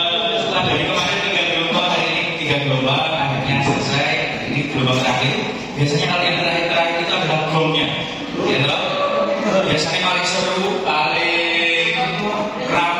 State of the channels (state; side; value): identical; both; correlation 1.00